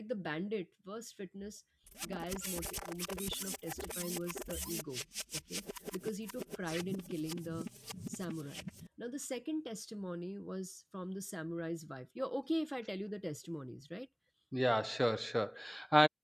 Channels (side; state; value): both; identical; correlation 1.00